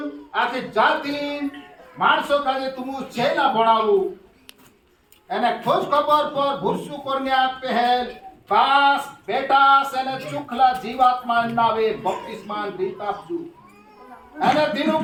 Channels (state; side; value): identical; both; correlation 1.00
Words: आखी जाति माणसों का जे तुम चेला बनावू एने खोज खबर पर भुरसु करने पहल पास बेटा सेने चुखला जीवात्मा नावे बपतिस्मान दीतापजू एने